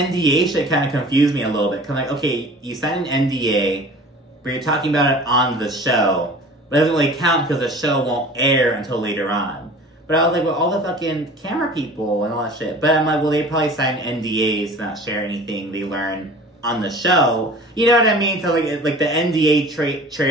shit kind of confused me a little bit. Cause I'm like, okay, you signed an NDA, but you're talking about it on the show. But it doesn't really count because the show won't air until later on. But I was like, well, all the fucking camera people and all that shit. But I'm like, well, they probably sign NDAs to not share anything they learn on the show. You know what I mean? So, like the NDA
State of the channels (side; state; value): both; normal; correlation 0.43